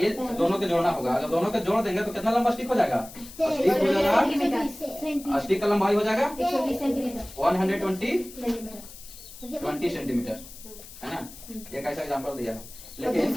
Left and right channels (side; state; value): left; noise; hiss, 17 dB below the sound